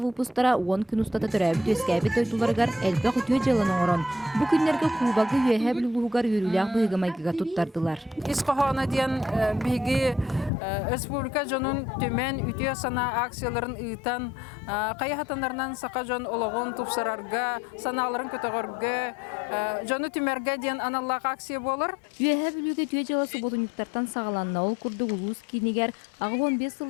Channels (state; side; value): drops out; right; at 10.5 s